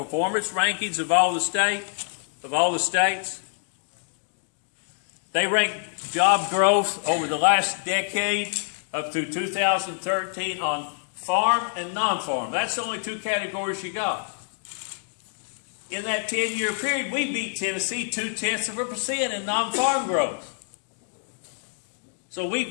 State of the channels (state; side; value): silent; right; digital silence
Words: rankings of all the states. They rank job growth over the last decade up through 2013 on farm and non-farm. That's the only 2 categories you got. In that 10-year period, we beat Tennessee 0.2% in non-farm growth. So we